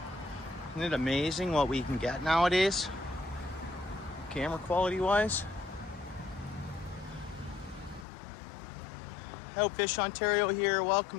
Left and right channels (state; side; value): drops out; right; at 8.1 s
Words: Isn't it amazing what we can get nowadays? Camera quality wise. Hello, Fish Ontario here.